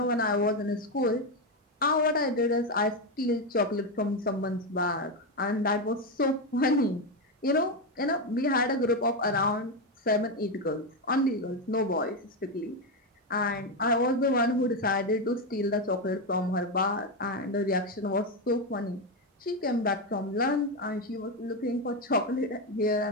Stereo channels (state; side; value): normal; both; correlation 0.09